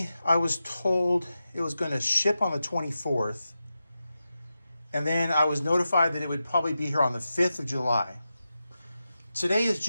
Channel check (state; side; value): inverted; both; correlation -0.91